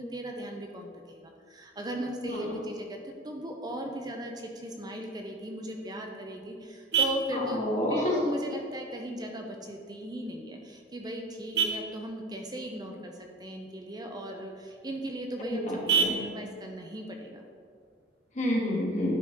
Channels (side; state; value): both; normal; correlation 0.36